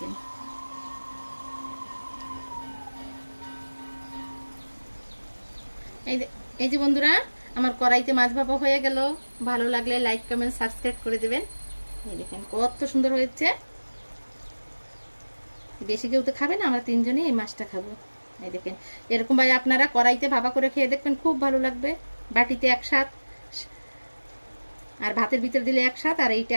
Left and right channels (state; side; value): inverted; both; correlation -1.00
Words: এই যে বন্ধুরা, আমার কড়াইতে মাছ ভাপা হয়ে গেল। ভালো লাগলে লাইক কমেন্ট সাবস্ক্রাইব করে দেবেন। এই দেখেন কত সুন্দর হয়েছে। বেশি কেউ তো খাবে না, আমরা তিনজনই এই মাছটা খাবো। এই দেখেন এরকম ভাবে আপনারা কড়াইতে ভাপা করে খেয়ে দেখবেন, খুব ভালো লাগবে। বাটিতে এক স্বাদ, আর ভাতের ভিতর দিলে এক স্বাদ, আর এইটা